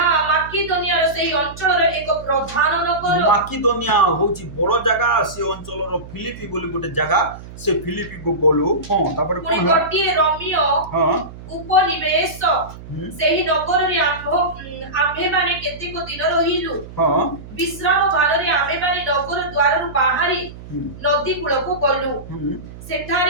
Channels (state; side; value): noise; right; hum, 15 dB below the sound